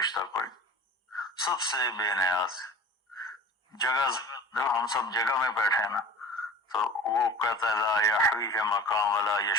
کوئی نہیں، سب سے بے نیاز۔ جگہ جب ہم سب جگہ میں بیٹھے نا تو وہ کہتا ہے لا یحویہ مقام ولا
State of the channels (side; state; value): both; normal; correlation 0.40